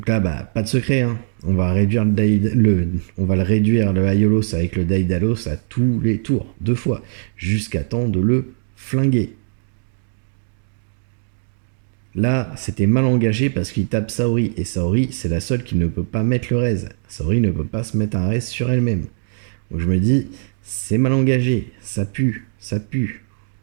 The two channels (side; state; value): left; silent; digital silence